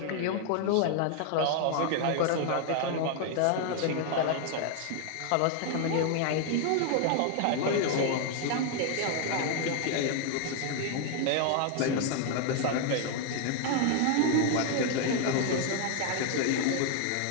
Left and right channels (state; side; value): different; both; correlation 0.00